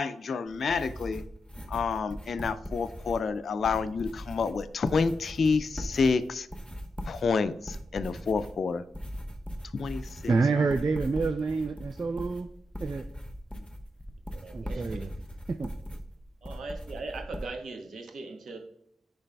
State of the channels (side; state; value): both; normal; correlation 0.86